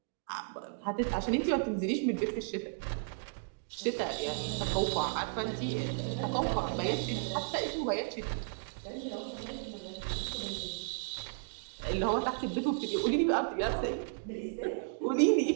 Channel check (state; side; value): silent; left; digital silence